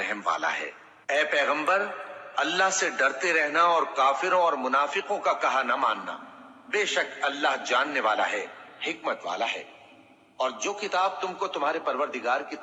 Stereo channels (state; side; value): identical; both; correlation 1.00